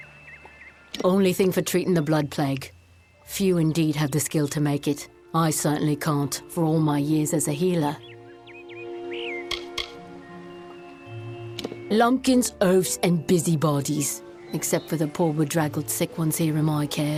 Only thing for treating the blood plague. Few indeed have the skill to make it. I certainly can't, for all my years as a healer. Lumpkins, oafs, and busybodies, except for the poor bedraggled sick ones here in my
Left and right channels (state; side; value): identical; both; correlation 1.00